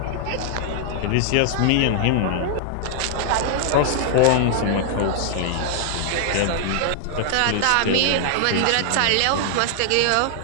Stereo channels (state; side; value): different; both; correlation 0.00